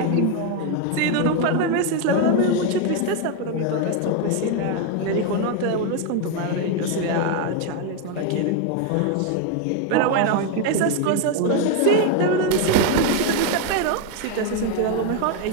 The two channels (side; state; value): both; different; correlation 0.02